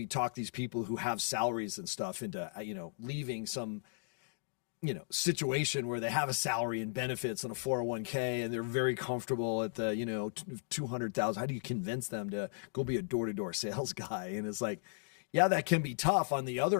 talk these people who have salaries and stuff into, leaving some, situation where they have a salary and benefits and a 401k and they're very comfortable at the, 200,000. How do you convince them to go be a door-to-door sales guy? And it's like, yeah, that can be tough. On the other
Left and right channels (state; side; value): silent; right; digital silence